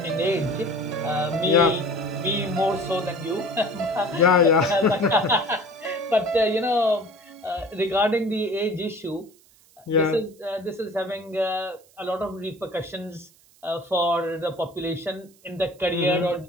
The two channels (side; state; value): right; noise; hiss, 29 dB below the sound